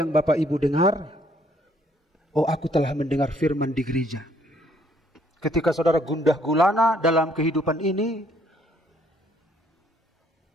Bapak Ibu dengar, oh aku telah mendengar firman di gereja. Ketika saudara gundah gulana dalam kehidupan ini,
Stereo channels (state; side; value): normal; both; correlation 0.65